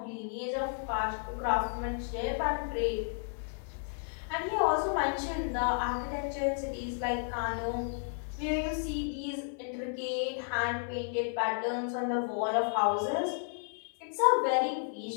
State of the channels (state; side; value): silent; right; 56 dB below the other